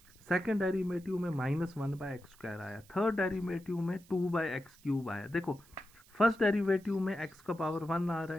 सेकेंड डेरिवेटिव में -1/x² आया, थर्ड डेरिवेटिव में 2/x³ आया। देखो फर्स्ट डेरिवेटिव में x का पावर 1 आ रहा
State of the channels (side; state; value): right; noise; hiss, 26 dB below the sound